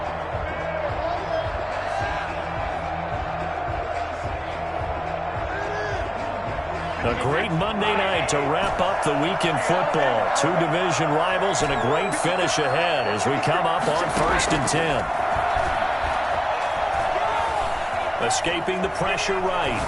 A great Monday night to wrap up the week in football. 2 division rivals and a great finish ahead as we come up on 1st and 10. Escaping the pressure right.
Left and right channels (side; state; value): both; identical; correlation 1.00